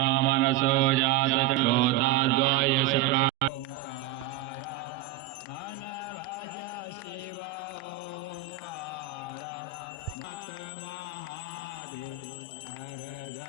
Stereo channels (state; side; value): quieter; left; 10.7 dB